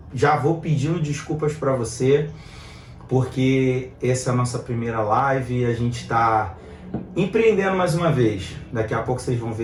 Já vou pedindo desculpas para você, porque essa é a nossa primeira live e a gente está empreendendo mais uma vez. Daqui a pouco vocês vão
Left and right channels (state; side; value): identical; both; correlation 1.00